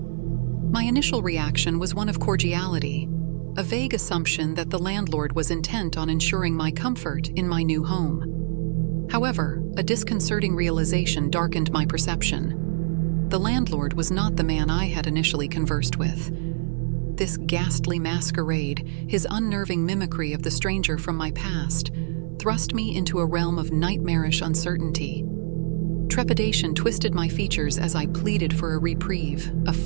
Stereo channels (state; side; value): silent; left; 57 dB below the other